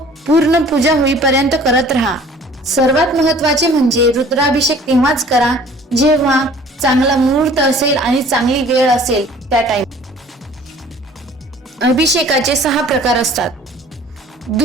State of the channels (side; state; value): both; normal; correlation 0.50